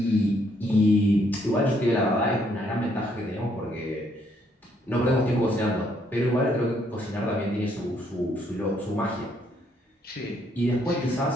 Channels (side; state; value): both; normal; correlation 0.70